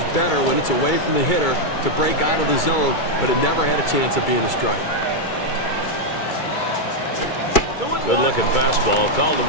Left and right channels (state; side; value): late; right; 2.3 ms